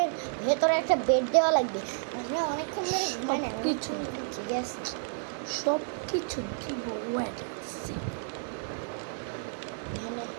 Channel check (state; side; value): silent; left; digital silence